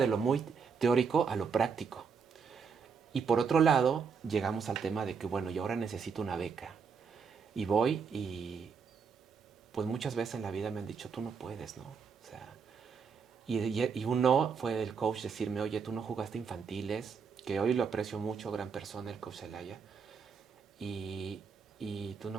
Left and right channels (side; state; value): left; quieter; 5.8 dB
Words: lo muy teórico a lo práctico. Y por otro lado, llegamos al tema de que, bueno, yo ahora necesito una beca. Y voy y pues muchas veces en la vida me han dicho, tú no puedes, ¿no? O sea, y un no fue del coach decirme, oye, tú no jugaste infantiles, que hoy lo aprecio mucho, gran persona, el coach Zelaya, y tú